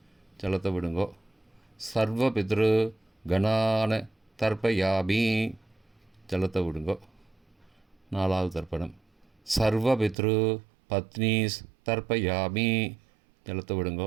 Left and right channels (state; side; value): drops out; left; at 10.2 s